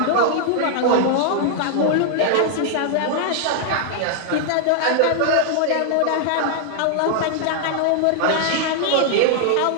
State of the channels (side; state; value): both; different; correlation -0.01